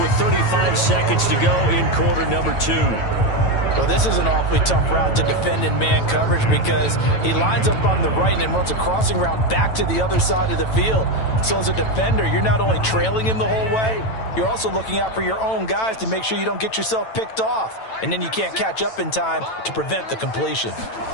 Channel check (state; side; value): late; right; 9.0 ms